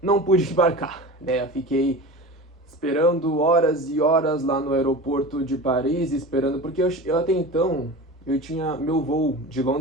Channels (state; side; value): normal; both; correlation 0.32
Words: Não pude embarcar, né? Eu fiquei esperando horas e horas lá no aeroporto de Paris, esperando, porque eu até então, eu tinha meu voo de